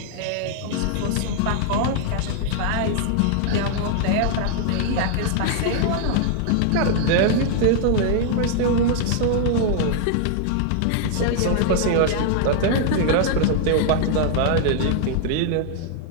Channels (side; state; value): both; different; correlation 0.00